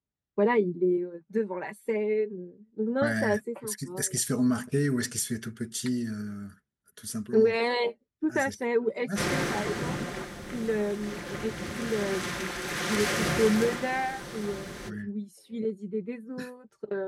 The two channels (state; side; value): identical; both; correlation 1.00